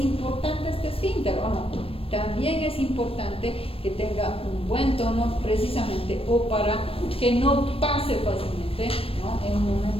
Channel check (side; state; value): right; late; 0.28 ms